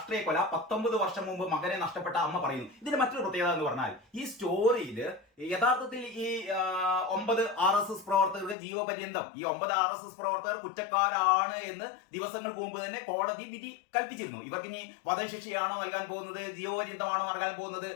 കൊല, 19 വർഷം മുമ്പ് മകനെ നഷ്ടപ്പെട്ട അമ്മ പറയുന്നു. ഇതിന്റെ മറ്റൊരു പ്രത്യേകത എന്ന് പറഞ്ഞാൽ ഈ സ്റ്റോറിയിൽ യഥാർത്ഥത്തിൽ ഈ 9 RSS പ്രവർത്തകർക്ക് ജീവപര്യന്തം, ഈ 9 RSS പ്രവർത്തകർ കുറ്റക്കാരാണ് എന്ന് ദിവസങ്ങൾക്ക് മുമ്പ് തന്നെ കോടതി വിധി കൽപ്പിച്ചിരുന്നു. ഇവർക്ക് ഇനി വധശിക്ഷയാണോ നൽകാൻ പോകുന്നത്, ജീവപര്യന്തമാണോ നൽകാൻ പോകുന്നത്,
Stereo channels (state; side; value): drops out; right; at 8.6 s